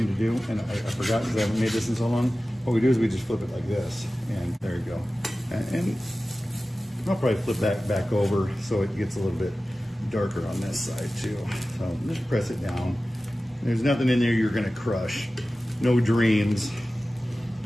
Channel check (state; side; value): normal; both; correlation 0.96